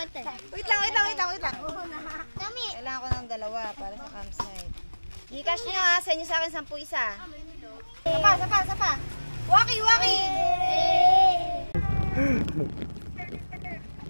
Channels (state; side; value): inverted; both; correlation -1.00